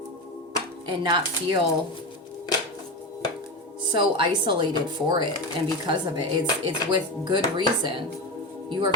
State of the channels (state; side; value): normal; both; correlation 0.20